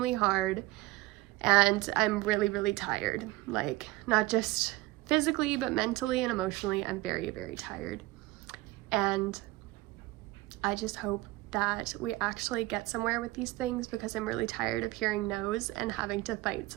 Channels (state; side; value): quieter; left; 19.2 dB